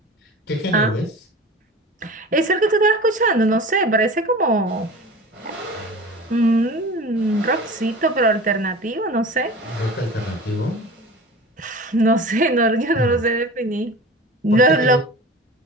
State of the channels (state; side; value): normal; both; correlation 0.36